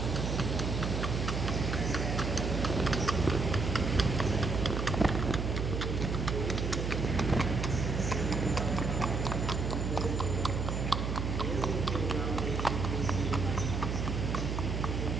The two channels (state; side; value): noise; right; hum, 1 dB below the sound